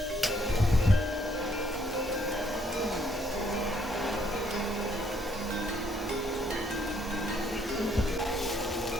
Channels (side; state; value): both; normal; correlation 0.68